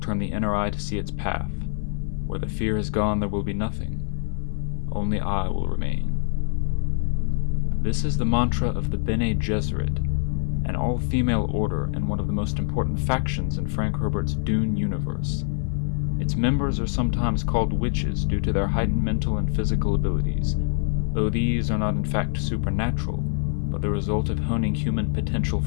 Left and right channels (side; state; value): right; silent; 55 dB below the other